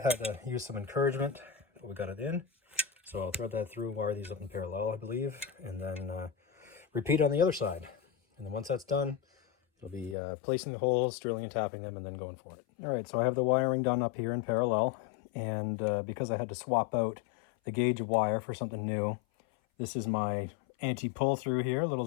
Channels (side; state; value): right; drops out; at 10.2 s